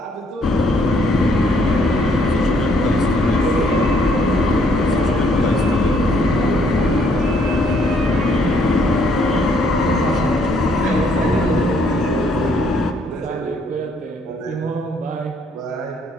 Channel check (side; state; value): both; normal; correlation 0.67